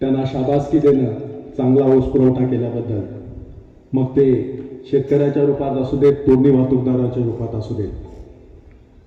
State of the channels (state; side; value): identical; both; correlation 1.00